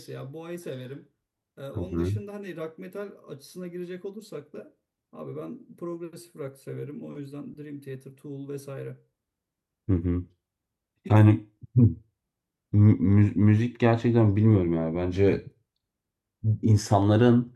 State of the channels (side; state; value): both; identical; correlation 1.00